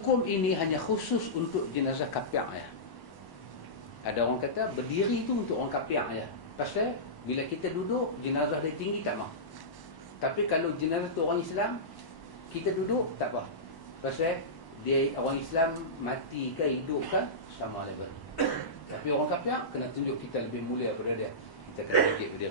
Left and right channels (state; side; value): late; right; 1.1 ms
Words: ini hanya khusus untuk jenazah kafir ya. Ada orang kata berdiri itu untuk orang kafir ya. Pasal bila kita duduk jenazah dia tinggi tak mau. Tapi kalau jenazah tu orang Islam, kita duduk tak apa. Pasal dia orang Islam mati ke hidup ke sama level. Tapi orang kafir kena tunjuk kita lebih mulia daripada dia. Kita kena bangkit